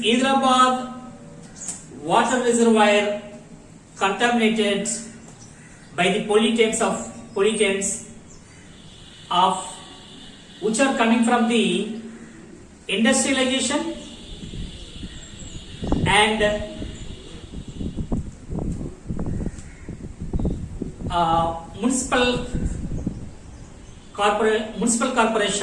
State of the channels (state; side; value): identical; both; correlation 1.00